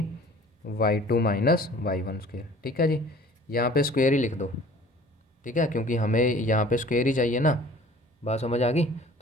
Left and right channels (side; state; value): both; normal; correlation 0.48